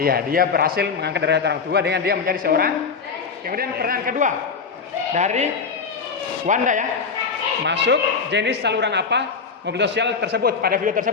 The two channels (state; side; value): quieter; right; 5.3 dB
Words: dia berhasil mengangkat derajat orang tua dengan dia menjadi seorang. Kemudian pertanyaan kedua dari Wanda ya. Masuk jenis saluran apa mobilitas sosial tersebut pada video